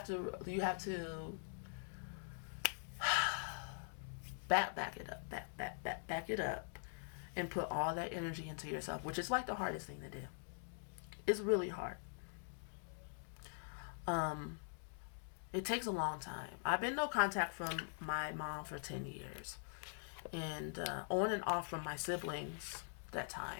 to back it up, back it up, and put all that energy into yourself, which is like the hardest thing to do. It's really hard. Um, it takes a long time. I've been no contact from my mom for 10 years, and on and off from my siblings that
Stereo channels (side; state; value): right; silent; digital silence